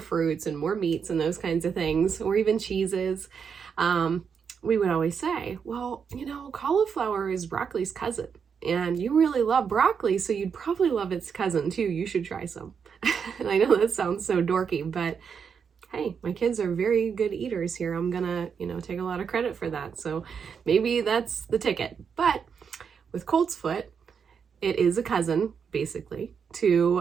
fruits and more meats and those kinds of things, or even cheeses, we would always say, well, you know, cauliflower is broccoli's cousin, and you really love broccoli, so you'd probably love its cousin too. You should try some. And I know that sounds so dorky, but hey, my kids are very good eaters here. I'm gonna, you know, take a lot of credit for that. So maybe that's the ticket. But with Coltsfoot, it is a cousin, basically,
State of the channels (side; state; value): left; quieter; 6.6 dB